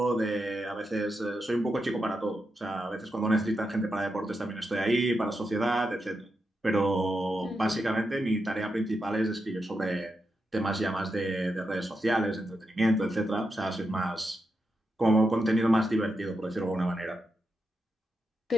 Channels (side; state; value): both; normal; correlation 0.86